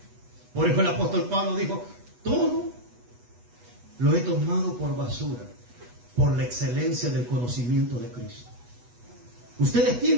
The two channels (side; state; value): left; late; 8.2 ms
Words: Por eso el apóstol Pablo dijo, todo lo he tomado por basura por la excelencia del conocimiento de Cristo. Ustedes